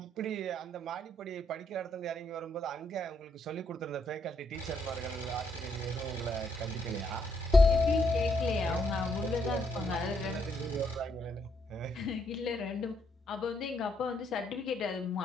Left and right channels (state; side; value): normal; both; correlation 0.74